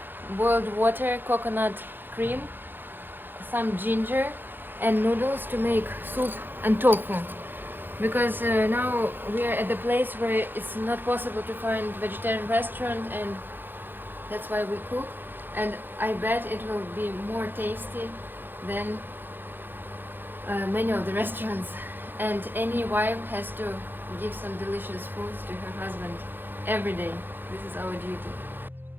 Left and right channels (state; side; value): late; left; 0.096 ms